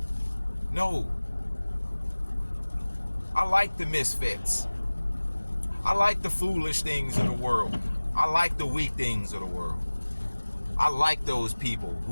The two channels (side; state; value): both; inverted; correlation -1.00